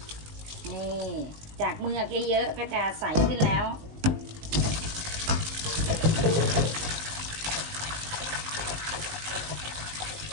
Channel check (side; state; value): left; late; 19 ms